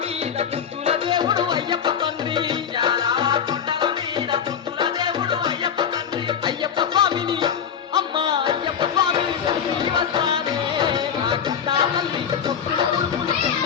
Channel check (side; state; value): right; quieter; 7.8 dB